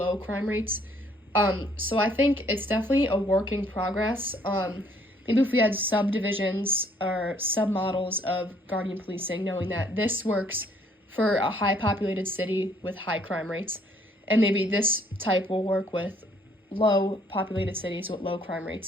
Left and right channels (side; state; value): both; normal; correlation 0.64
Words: crime rates? So I think it's definitely a work in progress. Maybe if we had subdivisions or submodels of guardian policing, knowing that this works for a high populated city with high crime rates, and maybe this type will work with low populated cities with low crime